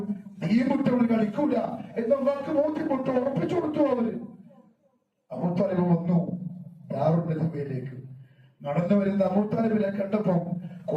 തീമുട്ടവർ കളിക്കൂല എന്നവർക്ക് ബോധ്യപ്പെട്ടു, ഉറപ്പിച്ചു കൊടുത്തു. അവര് അബൂ താലിബ് വന്നു ദാറുൽ നദീമയിലേക്ക്. നടന്നു വരുന്ന അബൂ താലിബിനെ കണ്ടപ്പോ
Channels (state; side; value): identical; both; correlation 1.00